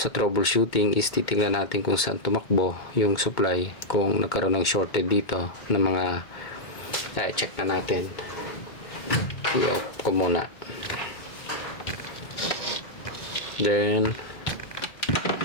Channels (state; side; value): late; right; 2.2 ms